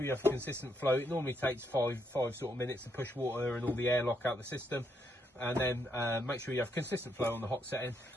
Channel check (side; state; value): both; normal; correlation 0.76